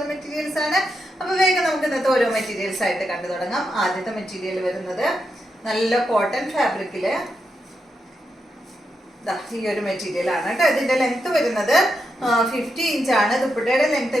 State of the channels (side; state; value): both; normal; correlation 0.85